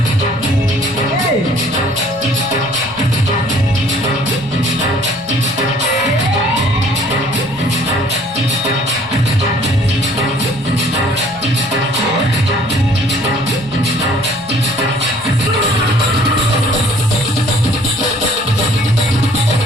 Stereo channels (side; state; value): right; noise; rumble, 23 dB below the sound